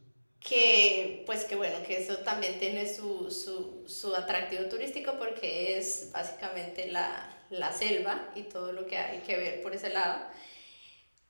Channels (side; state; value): both; inverted; correlation -1.00